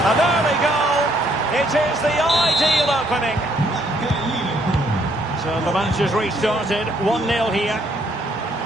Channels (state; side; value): normal; both; correlation 0.68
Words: An early goal. It is the ideal opening. So the match has restarted. 1-0 here.